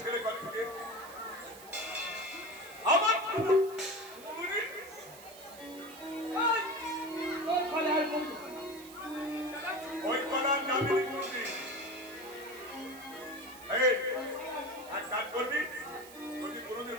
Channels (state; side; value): noise; right; hiss, 18 dB below the sound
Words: ছেলে কল থেকে আমার উনি তোর ফলে আর কোন ওই কলার যাবে না কোনদিন এই এক কাজ করবি যদি কোনদিন